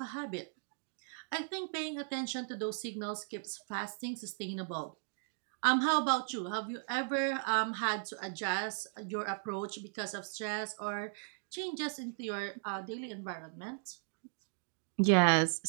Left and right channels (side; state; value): left; silent; digital silence